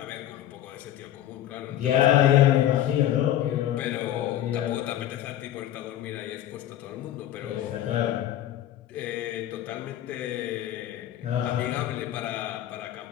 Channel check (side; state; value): right; quieter; 12.2 dB